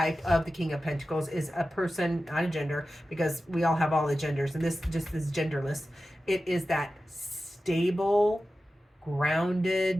of the King of Pentacles is a person, not a gender, because we all have all the genders, and this just is genderless. It is that stable,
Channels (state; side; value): normal; both; correlation 0.94